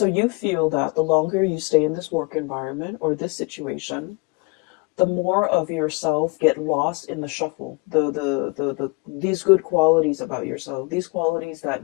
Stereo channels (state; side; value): quieter; right; 29.4 dB